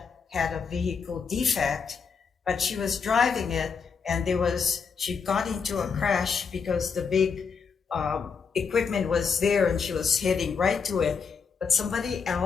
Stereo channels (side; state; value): right; quieter; 5.8 dB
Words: had a vehicle defect, but she was driving it and she got into a crash because the big equipment was there and she was heading right to it, but somebody